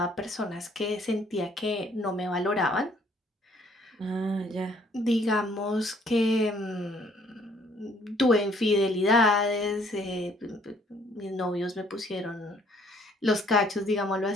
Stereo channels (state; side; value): normal; both; correlation 0.62